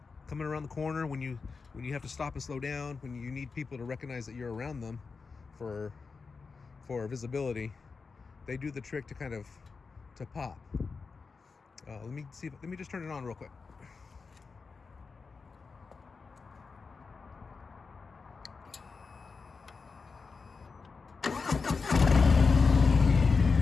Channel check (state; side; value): quieter; right; 4.7 dB